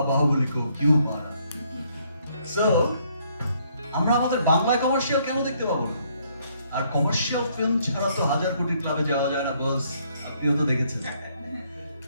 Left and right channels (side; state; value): both; inverted; correlation -0.68